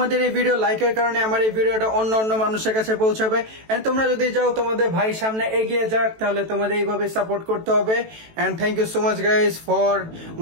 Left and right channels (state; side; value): late; left; 18 ms